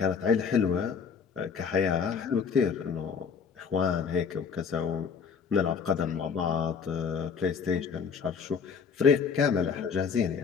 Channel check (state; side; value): quieter; right; 6.1 dB